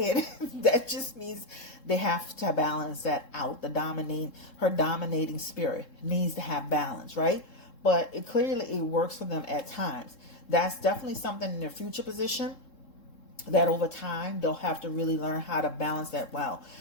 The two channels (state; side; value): late; right; 3.7 ms